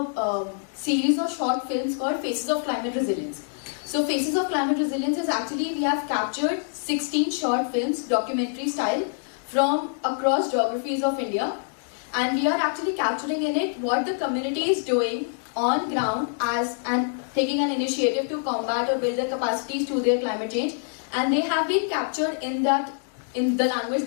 series of short films called Faces of Climate Resilience. So Faces of Climate Resilience is actually, we have captured 16 short films, documentary style, from across geographies of India. And we are actually capturing in it what the community is doing on ground and taking an initiative to combat or build their capacities to their climate change. And they have been captured in the language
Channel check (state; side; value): silent; right; digital silence